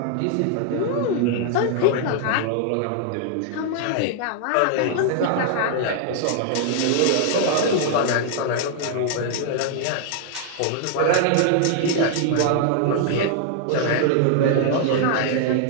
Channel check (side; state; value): both; different; correlation 0.00